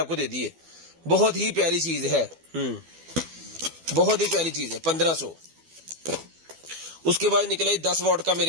दे दी है, बहुत ही प्यारी चीज है। बहुत ही प्यारी चीज है, 1500। उसके बाद निकला 10 वॉट का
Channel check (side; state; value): left; late; 12 ms